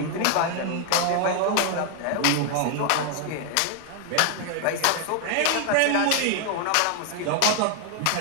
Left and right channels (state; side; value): different; both; correlation 0.00